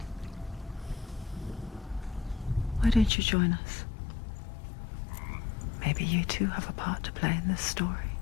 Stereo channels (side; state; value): right; drops out; at 3.1 s